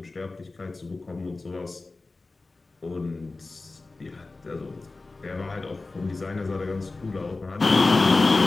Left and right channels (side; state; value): right; quieter; 3.4 dB